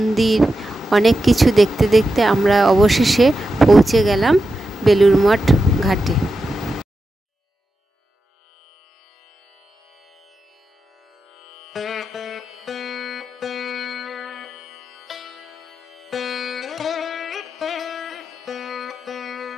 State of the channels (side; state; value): both; normal; correlation 0.89